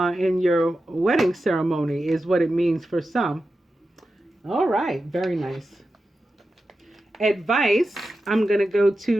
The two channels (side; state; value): both; normal; correlation 0.91